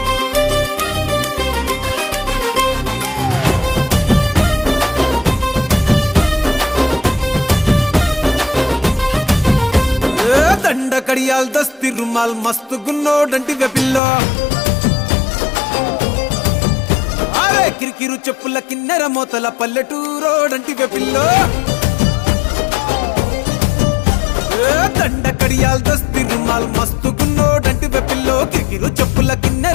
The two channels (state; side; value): drops out; right; at 14.0 s